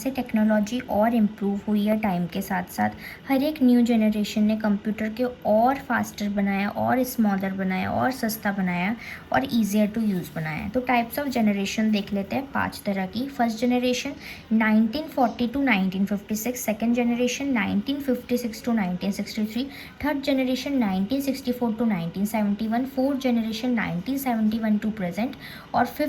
टेक्नोलॉजी और इम्प्रूव हुई है टाइम के साथ साथ। हर एक न्यू जनरेशन ने कंप्यूटर के और फास्टर बनाया, और स्मॉलर बनाया, और सस्ता बनाया, और ईजियर टू यूज़ बनाया। तो टाइप्स ऑफ जनरेशन देख लेते हैं 5 तरह की। First generation 1940 to 1956, second generation 1956 to 1963, third generation 1964 to 1971, fourth generation 1971 to present, और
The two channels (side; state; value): both; identical; correlation 1.00